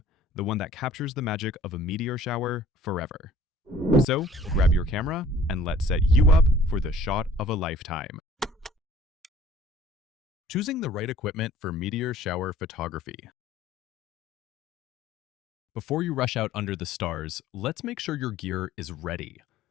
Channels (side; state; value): both; normal; correlation 0.51